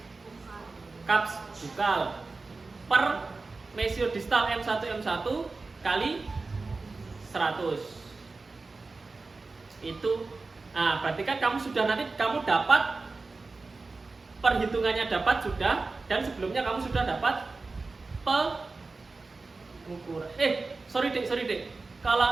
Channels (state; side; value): quieter; left; 3.8 dB